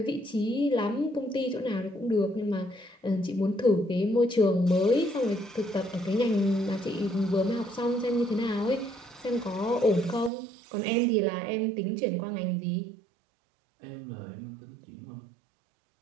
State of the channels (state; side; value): drops out; left; at 10.3 s